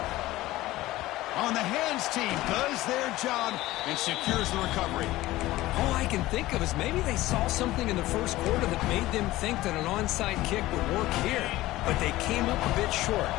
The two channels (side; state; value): right; quieter; 17.2 dB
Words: On the hands team does their job and secures the recovery. All I can think of is maybe they saw something in the first quarter that made them think that an onside kick would work here. But they came up a bit short.